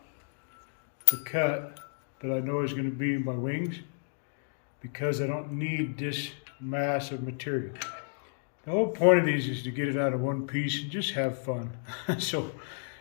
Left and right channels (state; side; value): silent; right; digital silence